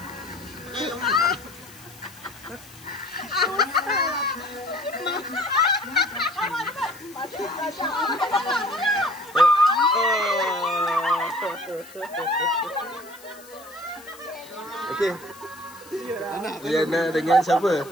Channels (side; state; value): left; noise; hiss, 21 dB below the sound